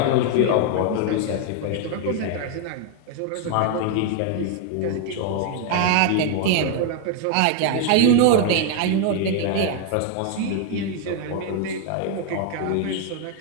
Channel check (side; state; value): both; different; correlation 0.01